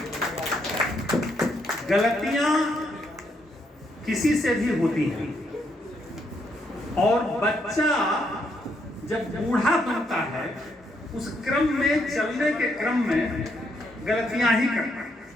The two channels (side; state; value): both; normal; correlation 0.75